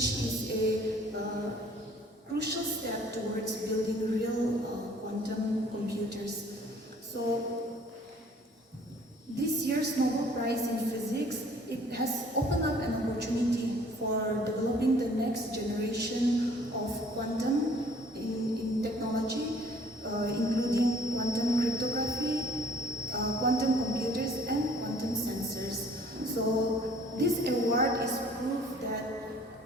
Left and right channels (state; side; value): normal; both; correlation 0.56